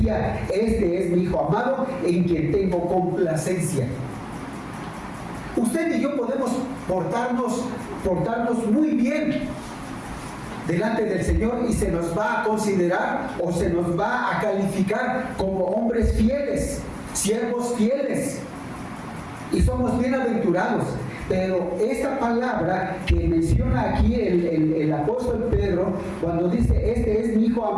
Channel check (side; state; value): both; identical; correlation 1.00